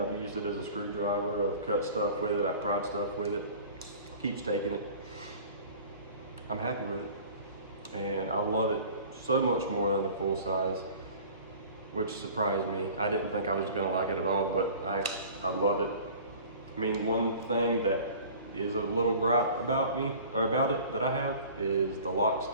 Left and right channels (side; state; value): both; inverted; correlation -0.44